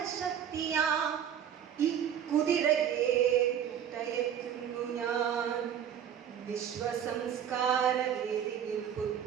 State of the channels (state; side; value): quieter; left; 9.2 dB